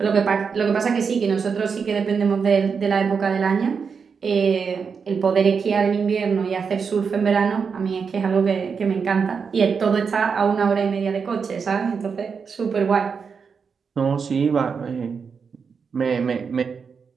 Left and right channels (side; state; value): left; quieter; 5.8 dB